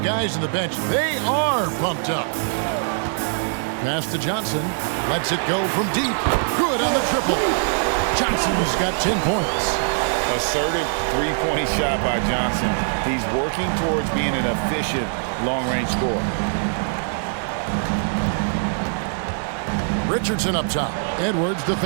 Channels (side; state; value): left; silent; digital silence